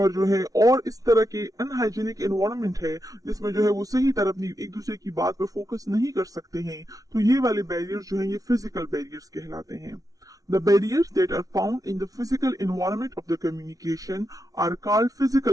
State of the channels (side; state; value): left; late; 0.18 ms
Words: जो है और इस तरह के अनहाइजीनिक एनवायरनमेंट है जिसमें जो है वो सही तरह अपनी एक दूसरे की बात पर फोकस नहीं कर सकते हैं, तो ये वाले बैरियर्स जो है ये फिजिकल बैरियर्स कहलाते हैं. The barriers that are found in the physical environment of the communication are called